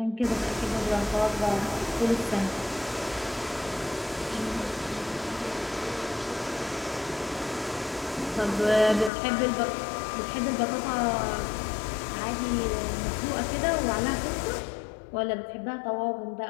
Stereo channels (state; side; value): drops out; right; at 9.1 s